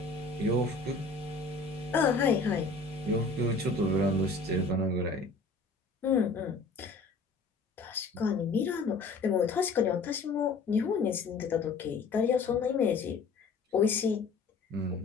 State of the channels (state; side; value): quieter; right; 3.8 dB